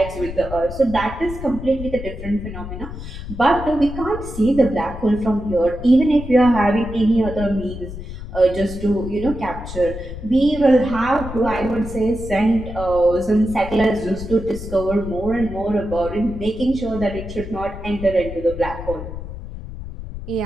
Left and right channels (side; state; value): left; noise; rumble, 10 dB below the sound